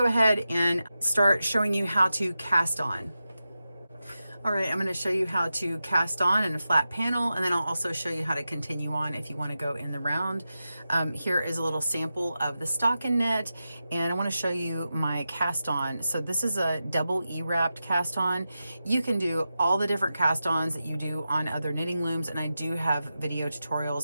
ahead and start showing you how to cast on. All right, I'm going to show you how to cast on in a flat panel, and then I'll also show you how to continue on if you want to go in the round. Here is a little sample of the stocking knit, and I want to show you my cast on. So this is a double E-wrapped cast on. You can do all the different cast ons that you do on other knitting looms, and I do have video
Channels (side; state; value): both; inverted; correlation -0.91